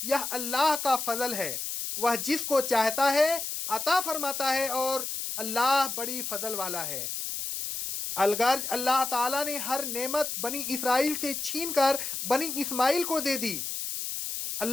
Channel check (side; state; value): left; noise; hiss, 4 dB below the sound